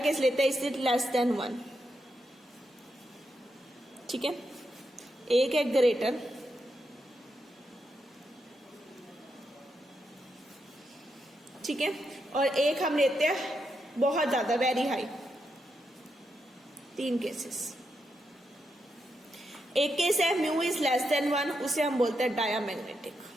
लेते हैं, इज इट लेस देन 1। ठीक है, एक है ग्रेटर, ठीक है, और एक हम लेते हैं बहुत ज्यादा, वेरी हाई। 3 केसेस। एक केस है म्यू इज लेस देन 1, उसे हम बोलते हैं डायामैग्नेटिक।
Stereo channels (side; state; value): both; normal; correlation 0.83